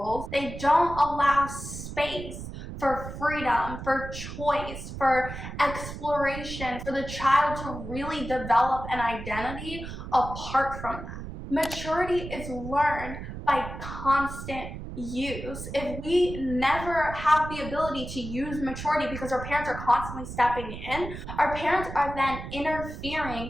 they don't allow space for freedom, for choice, for exploration, for the child to really develop an identity apart from that. Maturity is learned by constant use. If we never have the ability to use maturity because our parents are constantly stepping in, our parents are then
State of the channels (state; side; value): noise; right; rumble, 9 dB below the sound